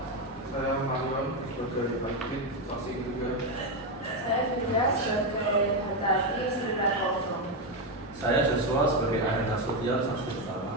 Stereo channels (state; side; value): normal; both; correlation 0.07